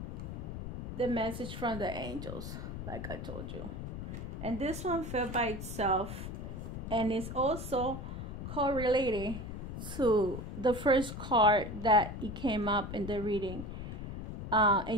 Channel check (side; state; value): left; noise; rumble, 7 dB below the sound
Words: the message from the angels, like I told you. And this one fell by itself, and it's also correlated to the first card that it came up in the reading. And